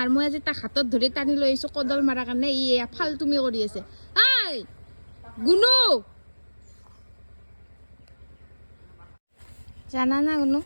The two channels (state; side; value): inverted; both; correlation -1.00